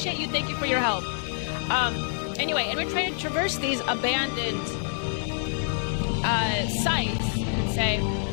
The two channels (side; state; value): right; silent; digital silence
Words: you. Thank you for your help. Anyway, and we're trying to traverse these abandoned sites, you could say,